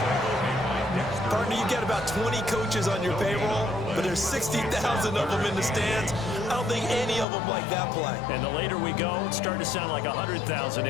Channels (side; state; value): right; drops out; at 7.2 s